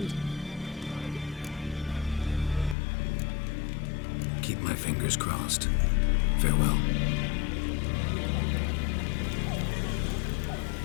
Keep my fingers crossed. Farewell.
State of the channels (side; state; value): right; drops out; at 2.8 s